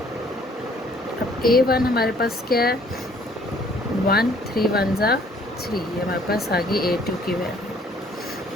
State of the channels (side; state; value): both; normal; correlation 0.59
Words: अब a1 हमारे पास क्या है 1, 3 1 जा 3, ये हमारे पास आ गई a2 की